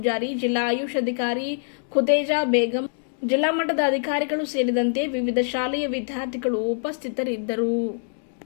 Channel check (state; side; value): silent; right; digital silence